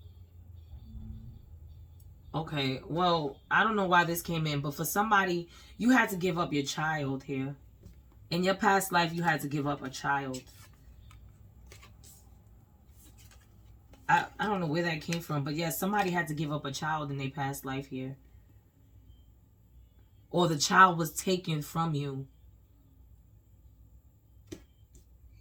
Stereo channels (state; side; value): identical; both; correlation 1.00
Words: Okay, well, I don't know why this came in, but for somebody, you had to give up your child here. In your past life, you had to give up a child. I don't know where that came from, but yeah, somebody had to give up a child in their past life here. Or the child was taken from you.